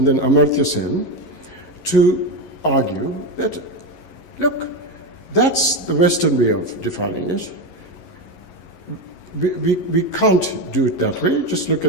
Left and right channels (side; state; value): right; late; 11 ms